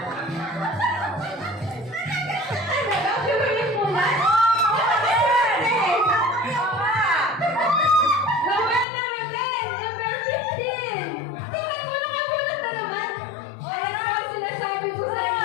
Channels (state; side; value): drops out; right; at 8.8 s